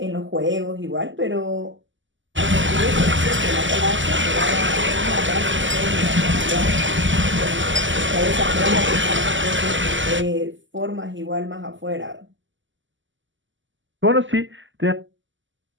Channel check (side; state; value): left; late; 0.55 ms